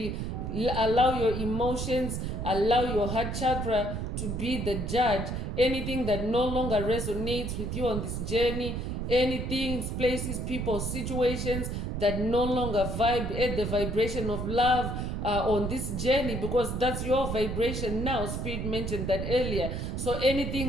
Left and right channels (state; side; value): noise; right; rumble, 3 dB below the sound